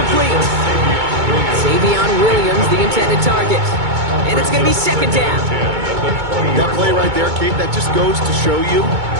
Savion Williams, the intended target. And it's going to be 2nd down. That play right there, Kate, that just goes to show you,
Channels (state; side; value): late; left; 2.2 ms